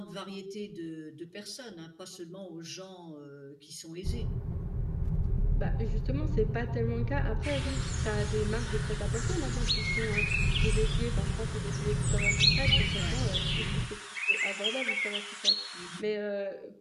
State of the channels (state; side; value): identical; both; correlation 1.00